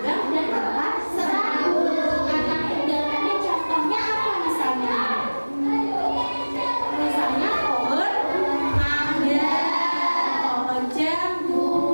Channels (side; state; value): both; inverted; correlation -1.00